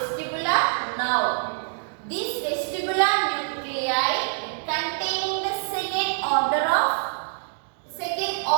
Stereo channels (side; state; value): left; silent; digital silence